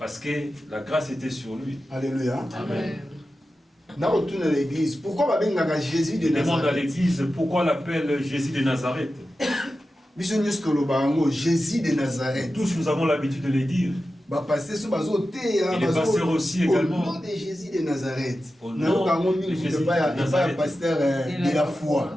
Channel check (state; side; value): normal; both; correlation 0.93